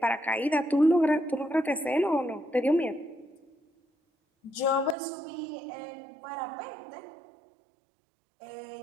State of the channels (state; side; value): drops out; left; at 5.0 s